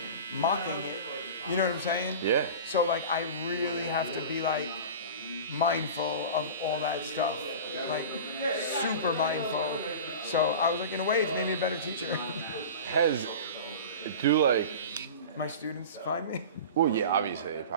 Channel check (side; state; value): both; inverted; correlation -0.34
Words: mocking it. You know what I'm saying? Yeah. So like I really have to be like mindful of all that stuff, like super mindful. So I was like, in a way, it's made me a better teacher. Has do like My students find me. well, yeah, obviously they